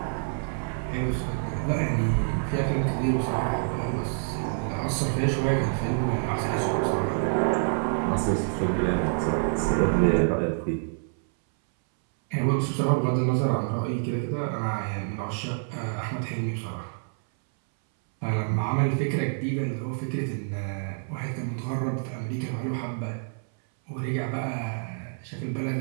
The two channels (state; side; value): silent; left; 60 dB below the other